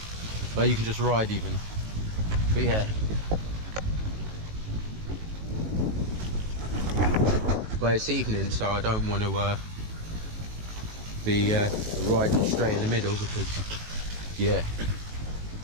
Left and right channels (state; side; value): late; left; 18 ms